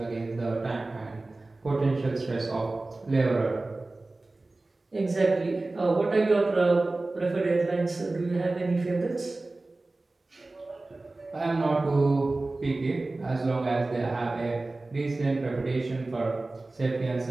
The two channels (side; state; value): left; quieter; 3.1 dB